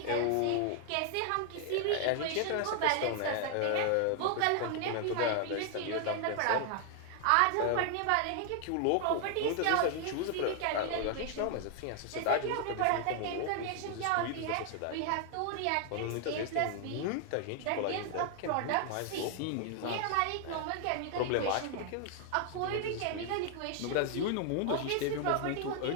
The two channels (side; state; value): both; different; correlation 0.00